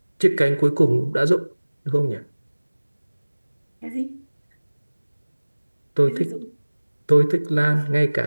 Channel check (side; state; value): both; inverted; correlation -1.00